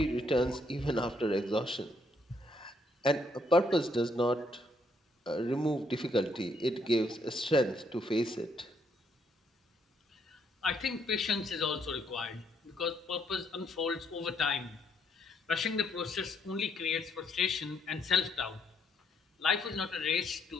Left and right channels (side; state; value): both; normal; correlation 0.72